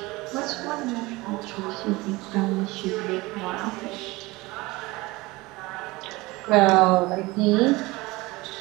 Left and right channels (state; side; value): quieter; left; 21.9 dB